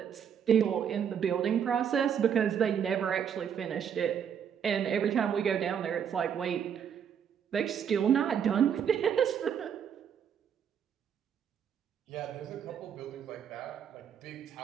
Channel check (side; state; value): left; quieter; 8.1 dB